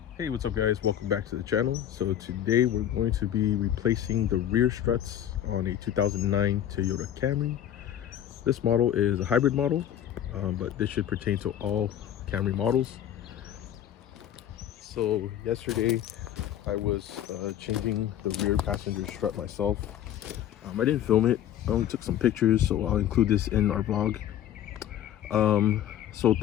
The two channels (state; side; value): quieter; right; 10.9 dB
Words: Hey, what's up guys, welcome back to the channel. So today we're going to be replacing the rear struts on a 2009 Toyota Camry. This model is a hybrid model, but this should pertain to all Camry models. So yesterday I was changing the rear passenger strut myself. I didn't film it, I only took some pictures, so I'll include this in our vlog. So